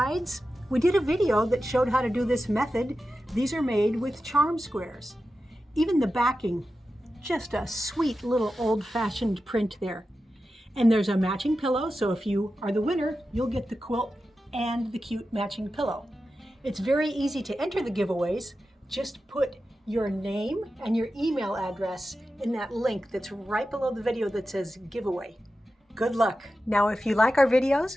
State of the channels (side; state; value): both; normal; correlation 0.92